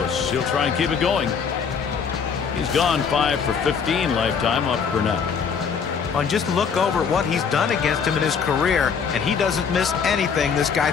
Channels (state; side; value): quieter; right; 6.3 dB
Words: he'll try and keep it going. He's gone 5 for 15 lifetime off Burnett. And just look over at what he's done against him in his career, and he doesn't miss anything this guy